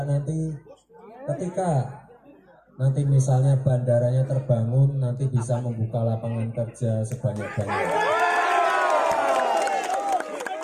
nanti ketika nanti misalnya bandaranya terbangun, nanti bisa membuka lapangan kerja sebanyak-banyaknya.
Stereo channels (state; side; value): identical; both; correlation 1.00